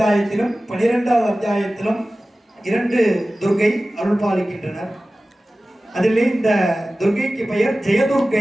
12வது அத்தியாயத்திலும் 2 துர்க்கை அருள் பாலிக்கின்றனர். அதிலே இந்த துர்க்கைக்கு பெயர்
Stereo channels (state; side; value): normal; both; correlation 0.96